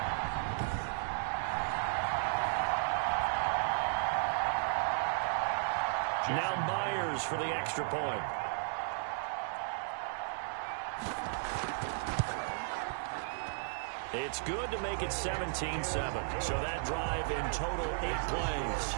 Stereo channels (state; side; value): silent; left; digital silence